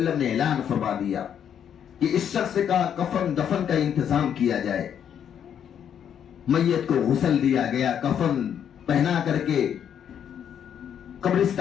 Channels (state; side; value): quieter; right; 8.8 dB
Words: نے اعلان فرما دیا کہ اس شخص کا کفن دفن کا انتظام کیا جائے. میت کو غسل دیا گیا، کفن پہنا کر کے